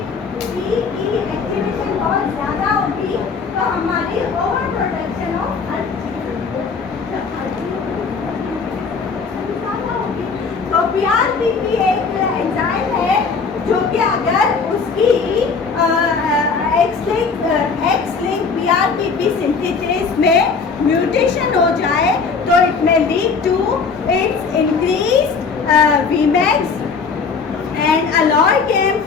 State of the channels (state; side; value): quieter; right; 5.1 dB